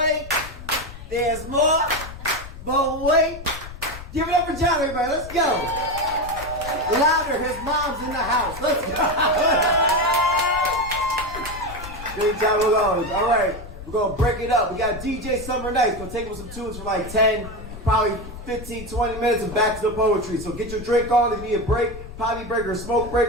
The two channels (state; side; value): noise; left; rumble, 13 dB below the sound